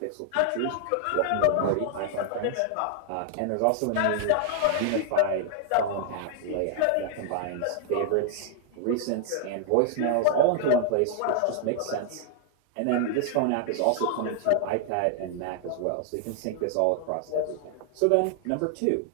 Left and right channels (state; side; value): different; both; correlation 0.00